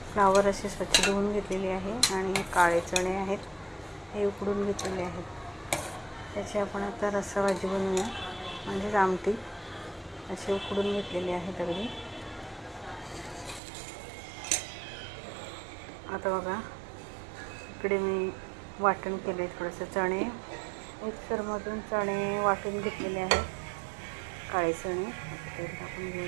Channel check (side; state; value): left; drops out; at 13.6 s